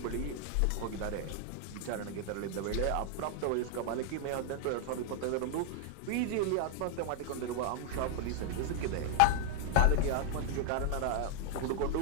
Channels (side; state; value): both; different; correlation 0.00